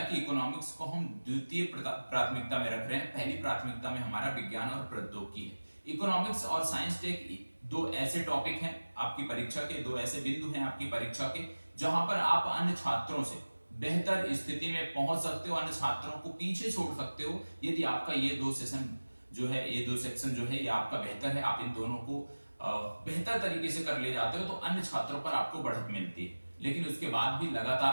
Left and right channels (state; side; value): inverted; both; correlation -1.00